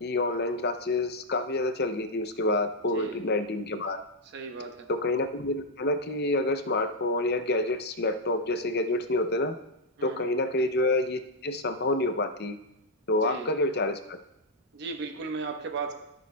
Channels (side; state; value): both; normal; correlation -0.02